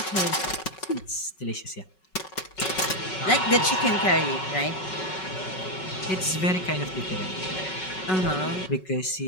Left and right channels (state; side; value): late; right; 5.4 ms